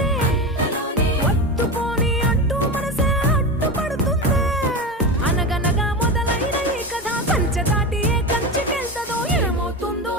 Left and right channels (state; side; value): normal; both; correlation 0.22